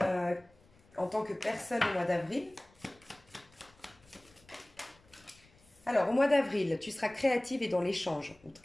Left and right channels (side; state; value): left; noise; rumble, 29 dB below the sound